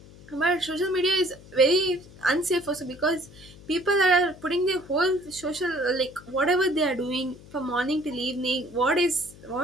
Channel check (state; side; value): noise; left; hum, 21 dB below the sound